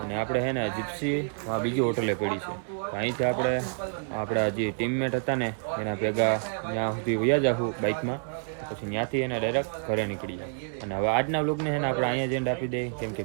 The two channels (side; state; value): left; silent; digital silence